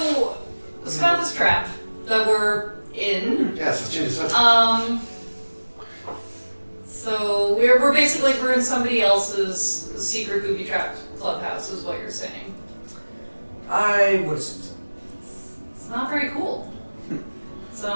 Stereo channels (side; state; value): both; inverted; correlation -1.00